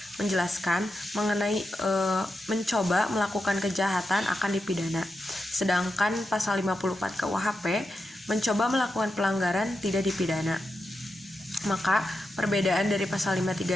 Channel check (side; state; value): both; normal; correlation 0.88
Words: menjelaskan mengenai mencoba melakukan kejahatan akan dipidana. Sedangkan pasal 54 KUHP mencoba melakukan pelanggaran tidak dipidana. Maka perbedaan dari pasal